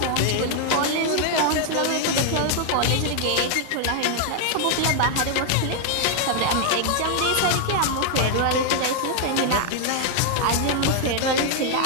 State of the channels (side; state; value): both; different; correlation 0.00